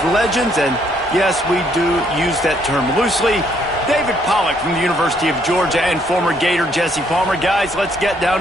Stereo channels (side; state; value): both; normal; correlation 0.69